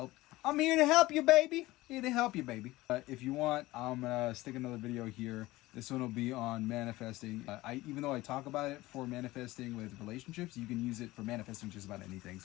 I'm here to help you, baby. Here to help you, baby. If you want, I'm gonna stick another video here. This one will be on manifesting. Even though I talk about it for manifesting with relationships, you can use it for manifesting just about anything.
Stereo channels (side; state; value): right; quieter; 18.5 dB